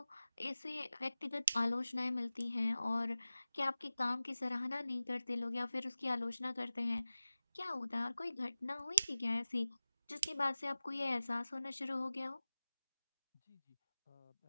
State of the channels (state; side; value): inverted; both; correlation -0.96